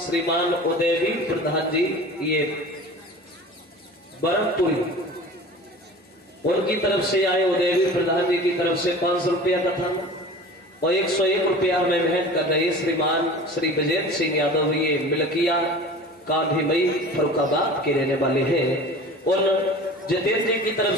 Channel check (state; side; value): normal; both; correlation 0.39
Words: उदयवीर प्रधान जी, ये बरमपुरी, उनकी तरफ से आए। उदयवीर प्रधान जी की तरफ से 500 रुपया कथा और 101 रुपया में भेंट कर रहे श्रीमान श्री विजेंद्र सिंह यादव, ये मिलकिया कांधीमई फरुखाबाद के रहने वाले हैं। उन जितेंद्र जी की तरफ